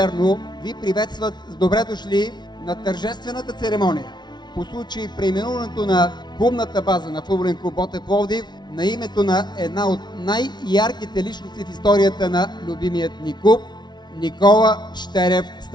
ви приветстват с добре дошли на тържествената церемония по случай преименуването на клубната база на футболен клуб Ботев Пловдив на името на една от най-ярките личности в историята на любимият ни клуб – Никола Щерев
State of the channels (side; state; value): right; late; 0.20 ms